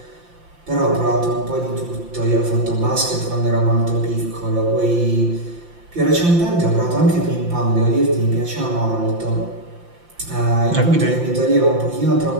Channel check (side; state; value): left; late; 5.8 ms